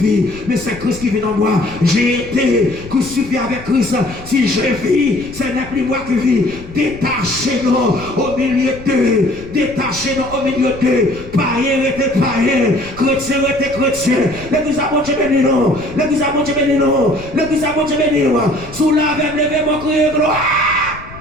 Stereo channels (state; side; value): noise; left; rumble, 16 dB below the sound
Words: mais c'est Christ qui vit en moi. J'ai été crucifié avec Christ. Si je vis, ce n'est plus moi qui vis. Détachez-nous au milieu d'eux. Détachez-nous au milieu d'eux. Païen était païen. Chrétien était chrétien. L'église a bon Dieu béni nous. L'église a bon Dieu béni nous. L'église a bon Dieu béni nous. Sous la veine, levez-moi, criez gloire.